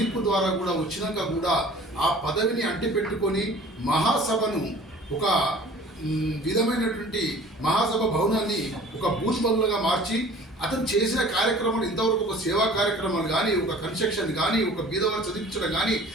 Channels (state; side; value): normal; both; correlation 0.47